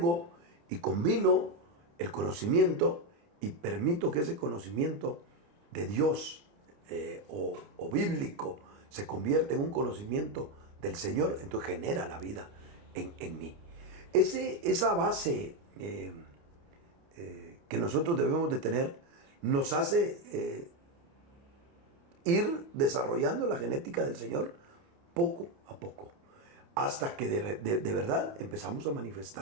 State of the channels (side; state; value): left; late; 29 ms